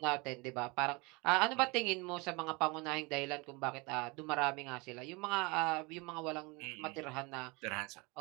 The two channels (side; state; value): left; quieter; 27.3 dB